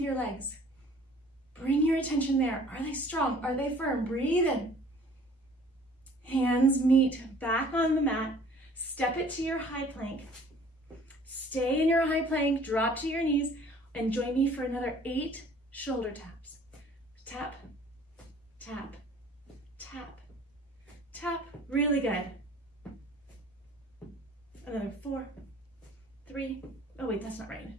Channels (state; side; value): normal; both; correlation 0.52